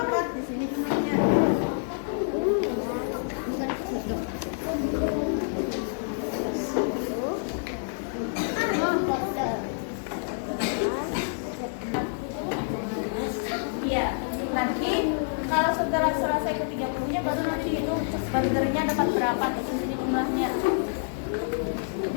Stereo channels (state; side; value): silent; right; digital silence